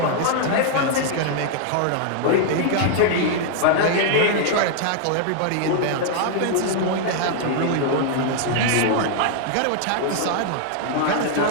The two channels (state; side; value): different; both; correlation 0.00